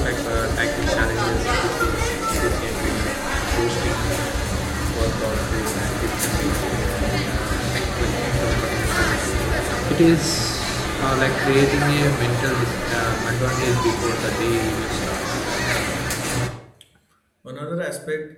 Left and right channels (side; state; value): both; identical; correlation 1.00